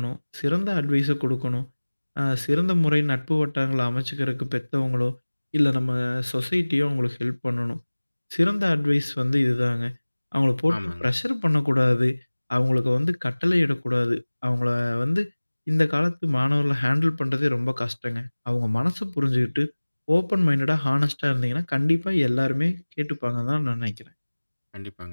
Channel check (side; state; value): both; inverted; correlation -1.00